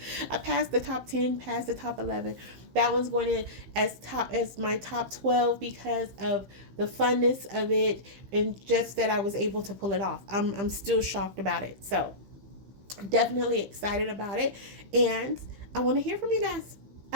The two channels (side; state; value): left; late; 15 ms